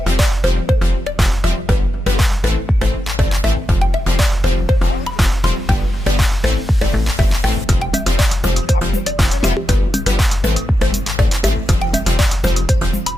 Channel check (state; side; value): normal; both; correlation 0.89